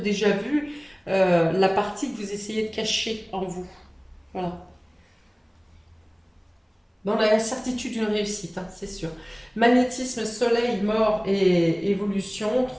vu la partie que vous essayez de cacher en vous. Voilà. Dans la certitude d'une réussite, hein, c'est sûr. Magnétisme, soleil, mort et évolution,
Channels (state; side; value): identical; both; correlation 1.00